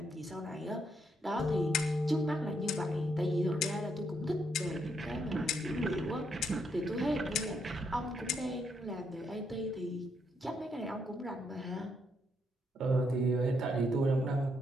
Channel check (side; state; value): both; normal; correlation 0.76